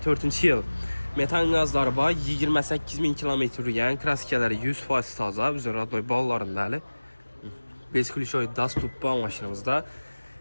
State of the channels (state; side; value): inverted; both; correlation -1.00